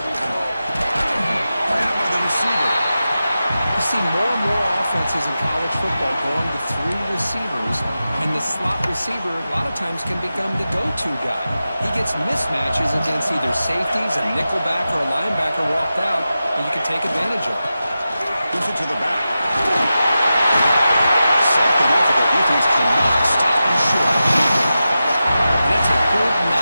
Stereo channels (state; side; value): inverted; both; correlation -0.92